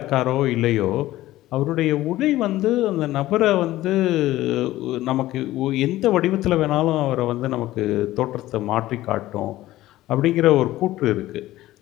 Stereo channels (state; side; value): quieter; right; 15.9 dB